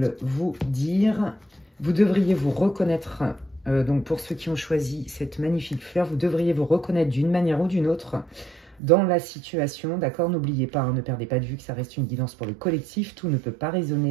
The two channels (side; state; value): left; drops out; at 8.8 s